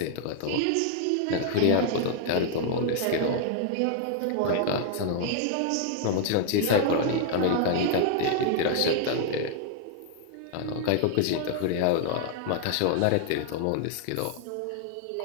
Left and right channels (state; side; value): different; both; correlation 0.00